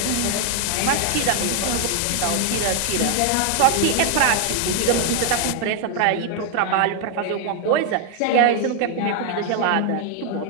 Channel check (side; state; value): both; different; correlation 0.00